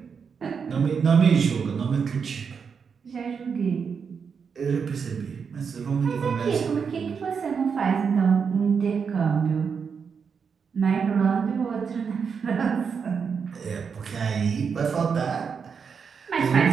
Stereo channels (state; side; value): quieter; left; 6.2 dB